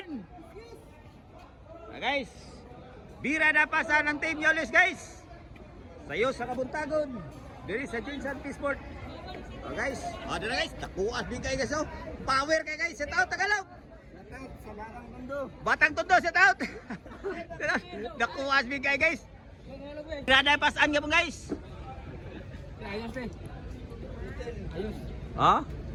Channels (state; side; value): identical; both; correlation 1.00